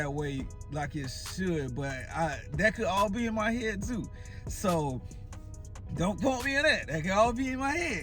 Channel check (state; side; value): identical; both; correlation 1.00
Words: way like it should, but that could all be in my head too. So don't quote me on that. That could all be in my